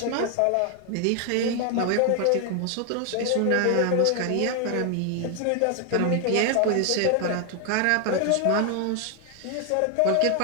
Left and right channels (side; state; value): both; different; correlation 0.00